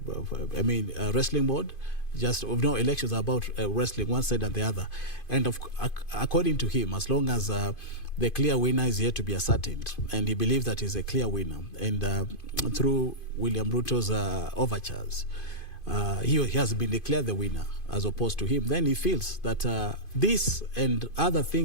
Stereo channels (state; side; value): late; right; 2.5 ms